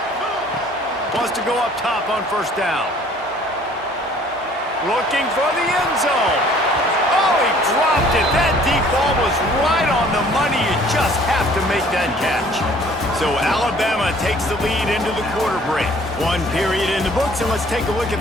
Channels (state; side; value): normal; both; correlation 0.55